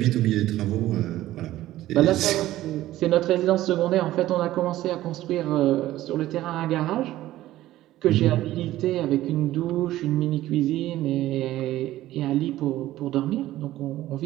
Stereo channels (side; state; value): left; quieter; 15.0 dB